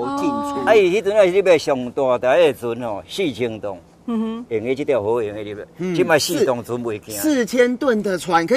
进出。伊迄阵啊，是要上大台的船吼，4000吨，用的这条河用的入来，即摆4吨船袂行。4000吨的船可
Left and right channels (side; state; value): both; identical; correlation 1.00